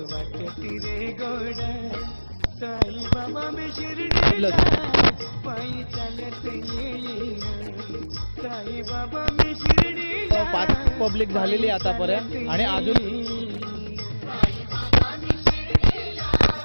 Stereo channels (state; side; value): inverted; both; correlation -1.00